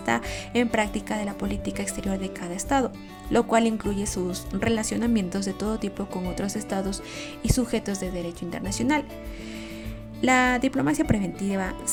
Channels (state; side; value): identical; both; correlation 1.00